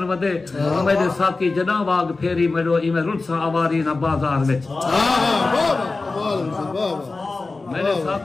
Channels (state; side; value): quieter; right; 3.6 dB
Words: वदे। मेरे साकी जॾां वाग फेरी मेरो इमे रुलसा आवारी ना बाजार विच। मेरे